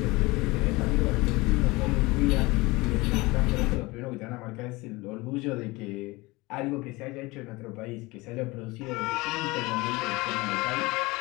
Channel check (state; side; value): quieter; right; 22.7 dB